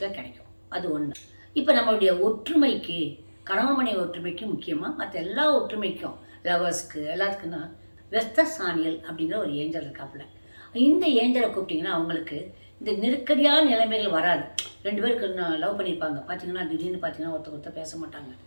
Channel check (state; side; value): inverted; both; correlation -1.00